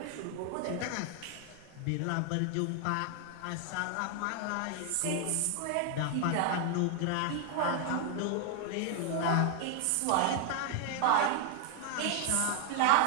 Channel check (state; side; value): different; both; correlation 0.00